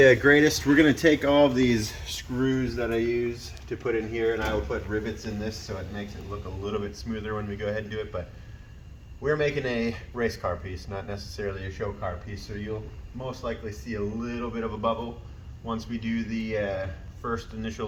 greatest. We're going to take all of these screws that I use to put in here, and I will put rivets in this so it makes it look a little bit smoother when we go ahead and do it. But we're making a race car piece, not necessarily a show car piece, so you'll most likely see a little bit of a bubble once we do the first initial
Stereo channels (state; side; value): identical; both; correlation 1.00